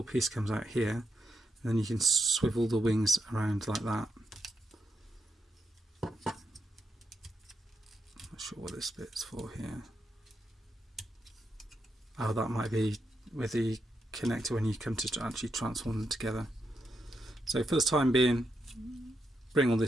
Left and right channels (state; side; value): normal; both; correlation 0.83